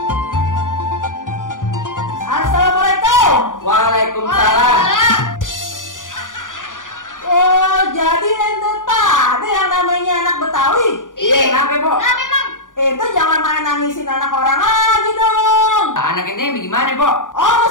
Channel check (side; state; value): right; late; 0.88 ms